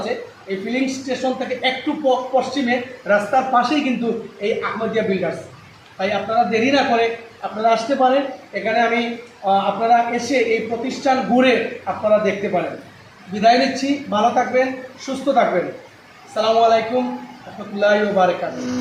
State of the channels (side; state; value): both; identical; correlation 1.00